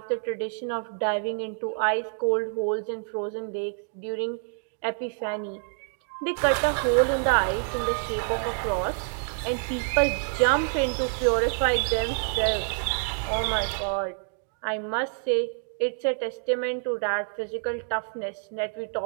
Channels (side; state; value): left; silent; 60 dB below the other